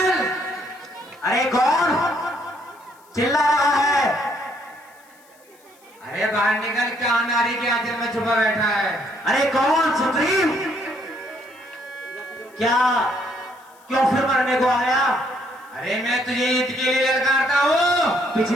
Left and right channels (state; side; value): noise; left; hiss, 30 dB below the sound